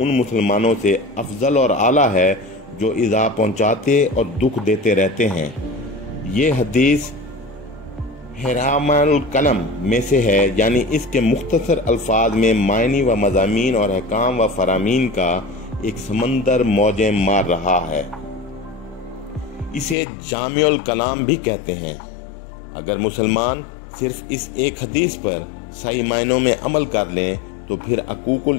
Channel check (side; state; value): right; drops out; at 20.0 s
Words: मुसलमानों से अफजल और आला है जो ईज़ा पहुँचाते और दुख देते रहते हैं। ये हदीस हिरामुल कलम में से है, यानी इसके मुख्तसर अल्फाज में मायनी व मज़ामीन और अहकाम व फरामीन का एक समंदर मौजें मार रहा है। इसे जामिउल कलाम भी कहते हैं। अगर मुसलमान सिर्फ इस एक हदीस पर सही मायनों में अमल कर लें तो फिर